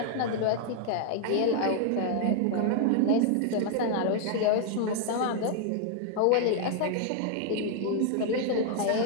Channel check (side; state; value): both; different; correlation 0.00